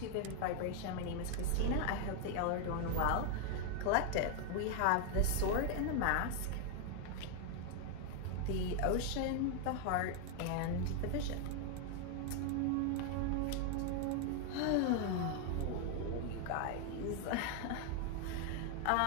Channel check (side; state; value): both; different; correlation 0.01